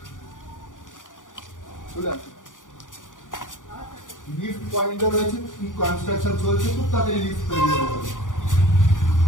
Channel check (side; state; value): right; late; 0.88 ms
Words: চলে আসো। লিফট পয়েন্টও রয়েছে, কনস্ট্রাকশন চলছে, খুব তাড়াতাড়ি লিফট তৈরি হয়ে যাবে।